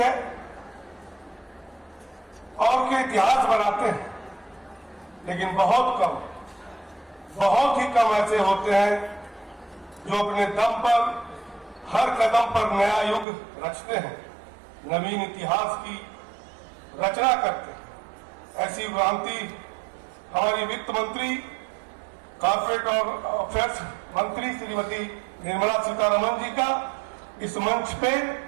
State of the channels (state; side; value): drops out; left; at 13.2 s